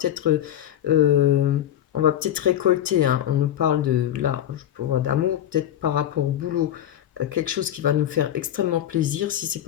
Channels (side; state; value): right; quieter; 11.2 dB